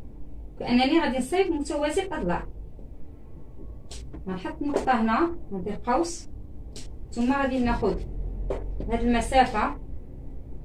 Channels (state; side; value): identical; both; correlation 1.00